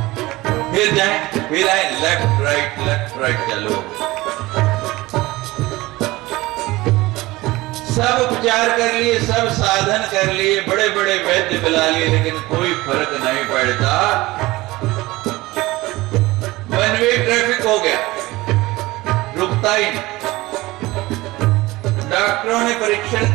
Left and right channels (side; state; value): left; quieter; 19.7 dB